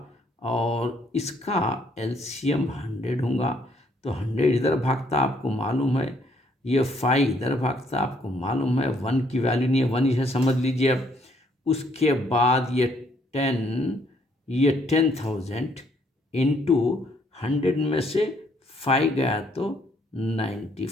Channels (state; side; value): normal; both; correlation 0.68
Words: और इसका LCM 100 होगा, तो 100 इधर भागता आपको मालूम है, ये 5 इधर भागता आपको मालूम है, 1 की वैल्यू नहीं है, 1 इसे समझ लीजिए। अब उसके बाद ये 10,000 इंटू 100 में से 5 गया तो